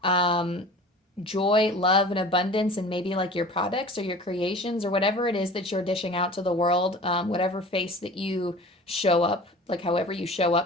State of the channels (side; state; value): both; normal; correlation 0.41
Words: joy, love, and abundance, and maybe like your products or your creations or whatever it is that you're dishing out to the world, whatever face that you show up, like however you show